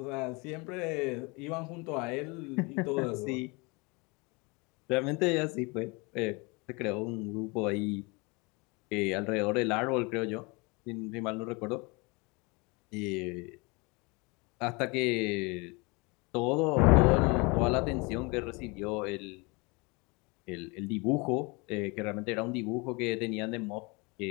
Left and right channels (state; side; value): quieter; right; 27.9 dB